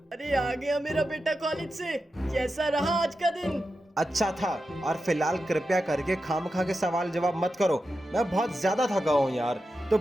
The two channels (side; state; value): both; normal; correlation 0.90